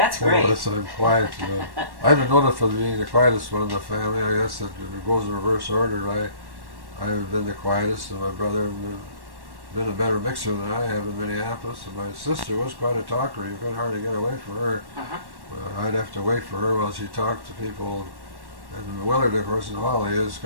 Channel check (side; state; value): left; late; 1.1 ms